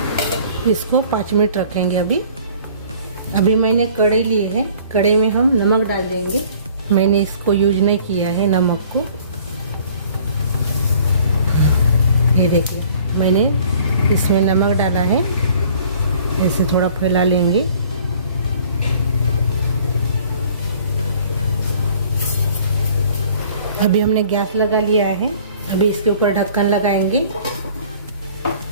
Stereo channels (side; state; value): both; inverted; correlation -0.53